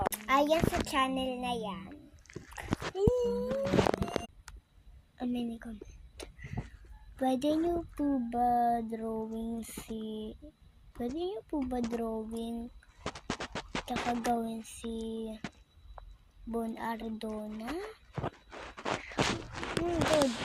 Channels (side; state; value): both; identical; correlation 1.00